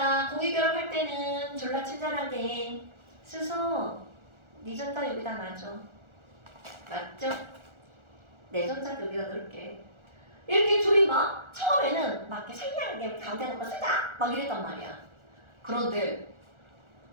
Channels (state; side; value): late; left; 1.4 ms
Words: 공유결합할 때는 졸라 친절하게 스서 네 전자 여기다 놔줘. 맞죠? 내 전자 여기다 넣을게. 이렇게 둘이 막 처음에는 막 이렇게 생략하게 가운데 놓고 쓰자 막 이랬단 말이야. 그런데